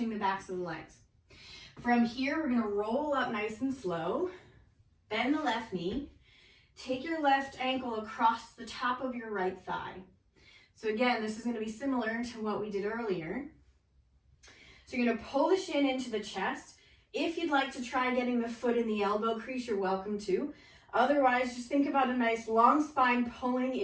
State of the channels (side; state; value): both; identical; correlation 1.00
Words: the backs of the legs. From here, we're going to roll up nice and slow, bend the left knee, take your left ankle across the top of your right thigh. So again, this is going to be similar to what we did earlier. So you're going to pull the shin into the chest. If you'd like to try getting the foot in the elbow crease, you're welcome to. Otherwise, just think about a nice long spine pulling